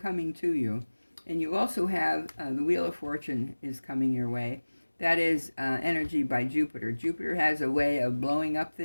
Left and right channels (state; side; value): inverted; both; correlation -1.00